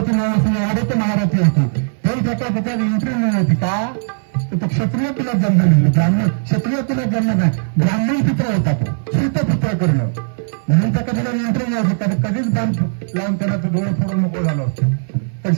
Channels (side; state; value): left; silent; 62 dB below the other